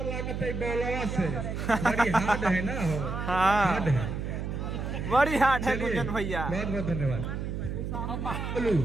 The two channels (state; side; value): noise; right; hum, 4 dB below the sound